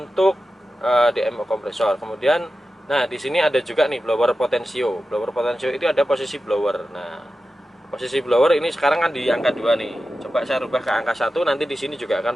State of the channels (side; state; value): both; normal; correlation 0.93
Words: DMO kompresor. Kemudian, nah di sini ada juga nih blower potensio. Blower potensio itu ada posisi blower. Nah posisi blower ini sekarang kan di angka 2 nih. Coba saya rubah ke angka 1, nanti di sini juga akan